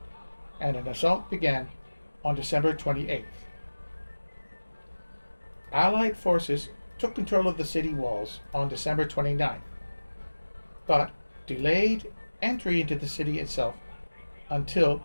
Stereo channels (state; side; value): inverted; both; correlation -1.00